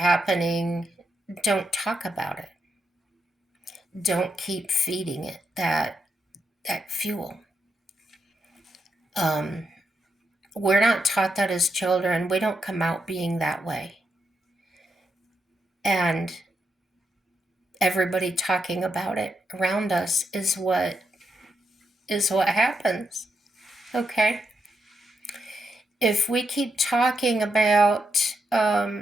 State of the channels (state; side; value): normal; both; correlation 0.82